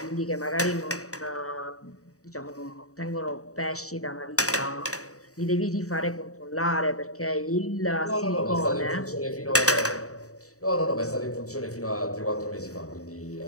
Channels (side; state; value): right; late; 0.65 ms